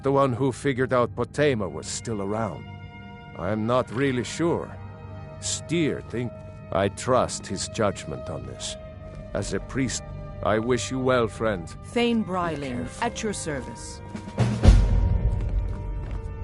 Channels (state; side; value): identical; both; correlation 1.00